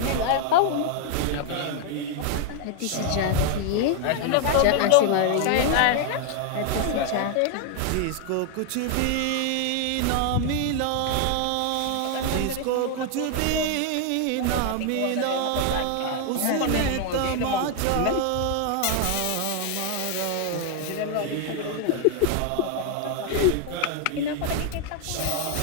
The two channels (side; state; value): both; different; correlation 0.00